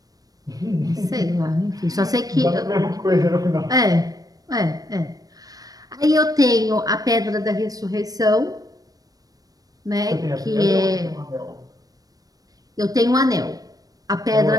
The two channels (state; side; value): late; left; 0.18 ms